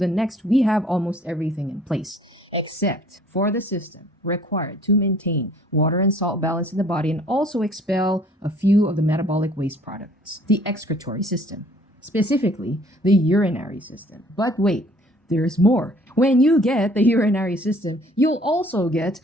next, we have almost everything in place, except for the system required to maintain water and salt balance in the body and also expel a few of the metabolic waste products, the excretory system, specifically the urinary system. But wait, there's more. When you get the urinary system, you'll also get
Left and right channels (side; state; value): both; normal; correlation 0.56